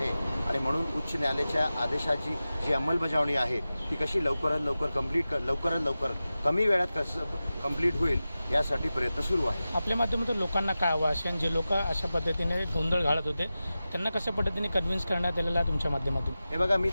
आणि म्हणून उच्च न्यायालयाच्या आदेशाची जी अंमलबजावणी आहे ती कशी लवकरात लवकर कमी वेळात कसं कंप्लीट होईल यासाठी प्रयत्न सुरू आहे। आपल्या माध्यमातून लोकांना काय आवाहन, जे लोक अशा पद्धतीने गोंधळ घालत होते त्यांना कशा पद्धतीने कन्व्हिन्स करण्यात आलेलं आहे तुमच्या माध्यमातून? हे बघा, मी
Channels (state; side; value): inverted; both; correlation -0.95